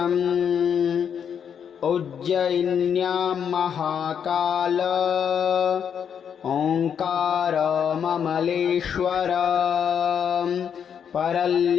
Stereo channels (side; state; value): right; quieter; 7.9 dB